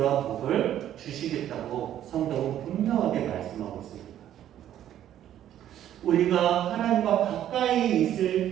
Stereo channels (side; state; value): left; quieter; 11.4 dB